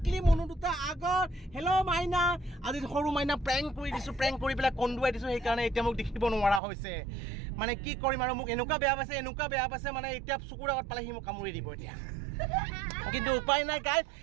মনু দুটা আগত। হেল্ল' মাইনা। আজি সৰু মাইনা প্ৰেংক কৰি দিছো, প্ৰেংক কৰি পেলাই কন্দুৱাই দিছো, সেইকাৰণে এতিয়া মোক দেখিব নোৱাৰা হৈছে। মানে কি কৰিম আৰু মোক এনেকুৱা বেয়া পাইছে মানে এতিয়া চকুৰ আগত পালে সি মোক কামুৰি দিব এতিয়া। কিন্তু উপায় নাই গাইজ,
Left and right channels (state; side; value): drops out; left; at 6.6 s